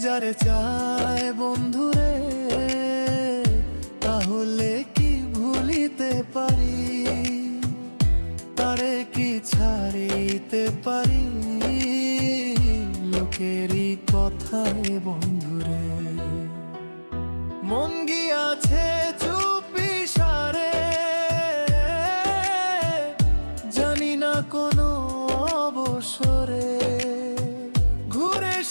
যারে চায় বন্ধুরে, তাহলে কি ভুলিতে পারি? তারে কি ছাড়িতে পারি? লোকেরই কথায় বন্ধুরে। মন গিয়াছে চুপি সারে, জানি না কোনো অবসরে ঘুরে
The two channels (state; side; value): inverted; both; correlation -1.00